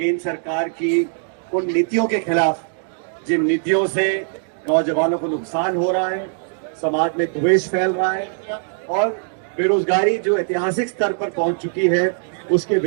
सरकार की उन नीतियों के खिलाफ, जिन नीतियों से नौजवानों को नुकसान हो रहा है, समाज में द्वेष फैल रहा है और बेरोजगारी जो ऐतिहासिक स्तर पर पहुंच चुकी है, उसके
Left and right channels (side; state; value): left; silent; digital silence